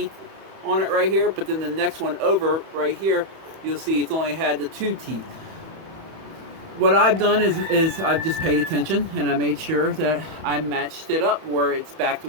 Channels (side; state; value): left; late; 31 ms